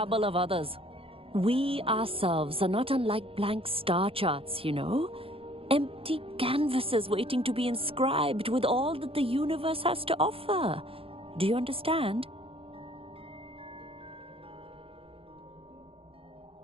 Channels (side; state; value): left; late; 0.27 ms